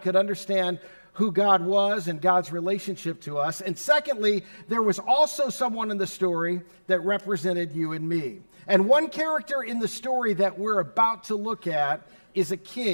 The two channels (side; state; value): both; inverted; correlation -1.00